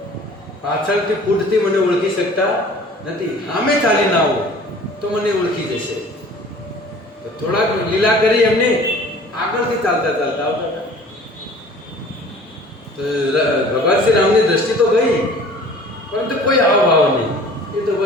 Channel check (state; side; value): normal; both; correlation 0.47